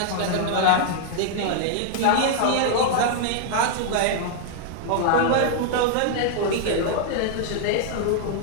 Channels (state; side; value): different; both; correlation -0.01